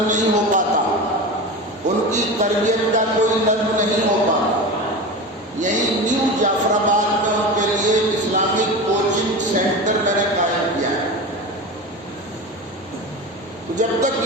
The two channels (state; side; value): normal; both; correlation 0.27